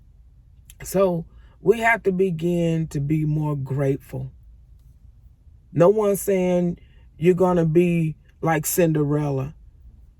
So we have to begin to be more grateful. No one's saying you're going to be like Cinderella,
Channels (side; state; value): both; identical; correlation 1.00